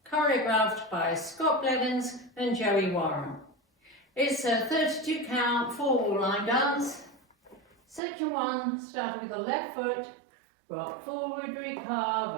choreographed by Scott Blevins and Joey Warren. It's a 32 count 4-wall line dance. Section 1, start with the left foot, rock forward,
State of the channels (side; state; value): left; drops out; at 8.0 s